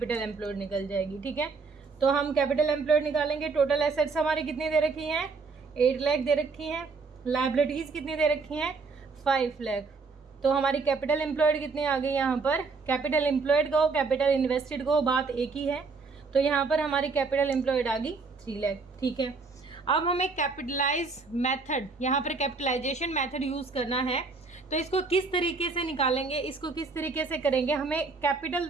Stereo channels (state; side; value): quieter; left; 4.4 dB